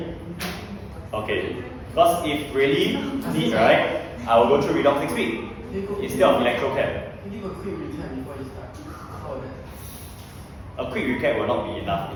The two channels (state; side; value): identical; both; correlation 1.00